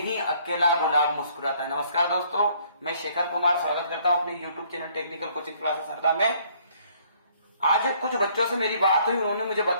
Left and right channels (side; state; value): both; inverted; correlation -0.63